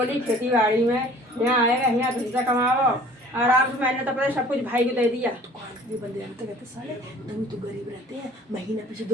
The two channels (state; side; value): normal; both; correlation 0.50